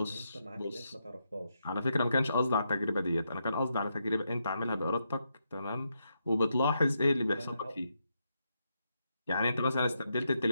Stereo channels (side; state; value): both; inverted; correlation -0.82